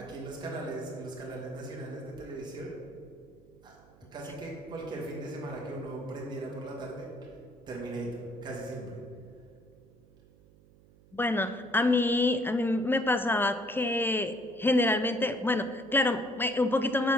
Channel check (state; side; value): noise; right; hum, 26 dB below the sound